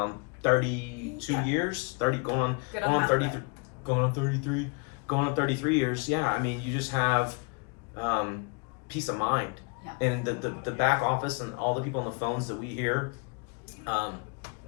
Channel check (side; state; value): right; quieter; 34.4 dB